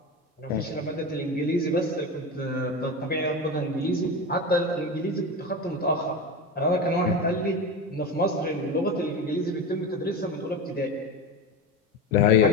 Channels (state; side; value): normal; both; correlation 0.23